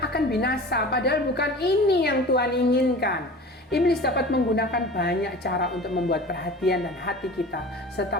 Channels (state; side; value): normal; both; correlation 0.38